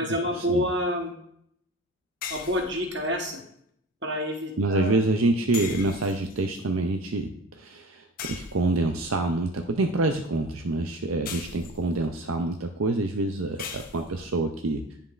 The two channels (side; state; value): both; normal; correlation 0.36